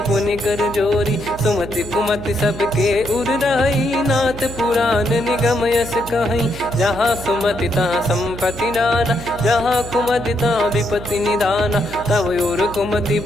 पुनि कर जोरी। सुमति कुमति सबके उर रही, नाथ पुराण निगम यस कहीं। जहाँ सुमति तहाँ संपत्ति नाना, जहाँ कुमति तहाँ विपत्ति निदाना। तब और कुमति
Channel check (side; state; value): right; noise; hum, 13 dB below the sound